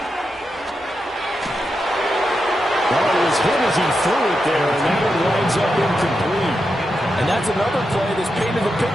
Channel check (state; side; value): normal; both; correlation 0.87